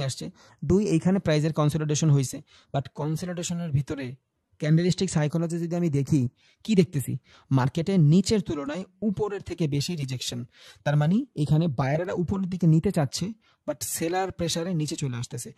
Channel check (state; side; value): identical; both; correlation 1.00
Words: আসছে, দুই এইখানে প্রাইজের কনসলিডেশন হয়েছে, বাট কনসলিডেশনের ভিতরে ক্যান্ডেলস্টিক সাইকোলজি যদি আমি দেখি, কি দেখতেছি, মার্কেটের নিচের তুলনায় উপরের থেকে বেশি রিজেকশন। তার মানে এখানে বায়ারেরা উপরের দিকে নিতে চাচ্ছে, বাট সেলার প্রেসারে নিচে চলে আসতেছে।